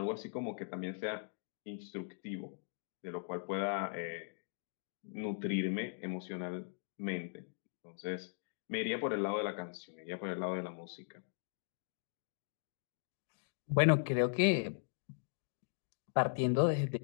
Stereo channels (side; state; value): right; silent; digital silence